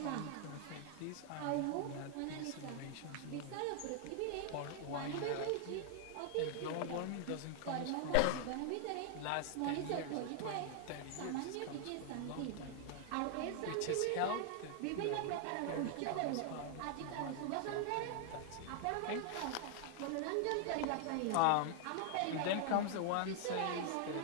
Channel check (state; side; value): different; both; correlation 0.00